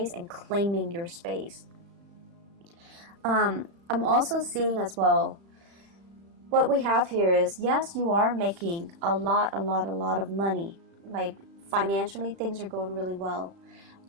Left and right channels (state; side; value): late; left; 36 ms